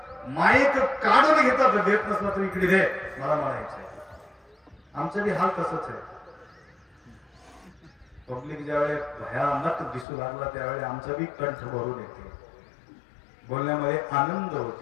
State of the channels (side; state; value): right; drops out; at 10.1 s